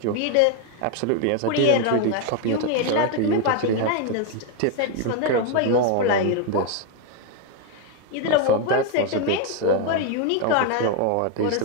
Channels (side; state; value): both; different; correlation 0.01